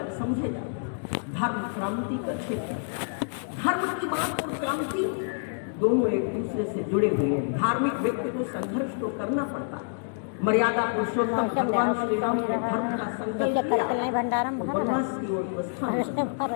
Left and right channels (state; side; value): silent; right; digital silence